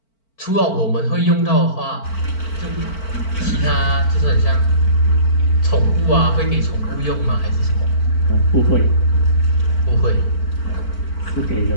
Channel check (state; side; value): late; right; 4.5 ms